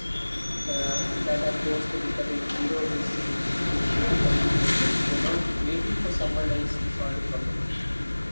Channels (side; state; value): both; inverted; correlation -1.00